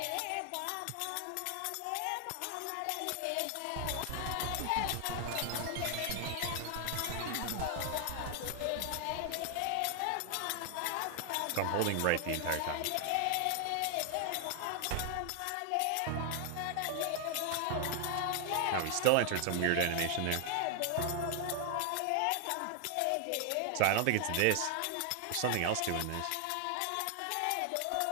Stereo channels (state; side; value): different; both; correlation 0.00